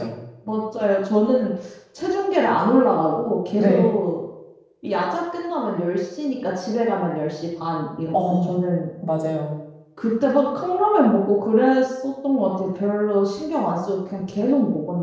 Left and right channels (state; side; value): identical; both; correlation 1.00